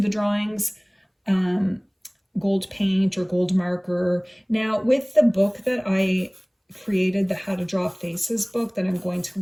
drawings, gold paint or gold marker. Now with the book that I created, the How to Draw Faces book, that I'm going to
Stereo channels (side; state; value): both; identical; correlation 1.00